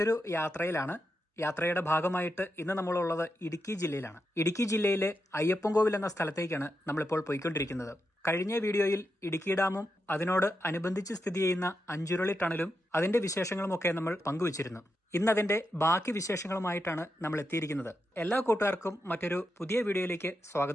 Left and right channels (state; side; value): normal; both; correlation 0.86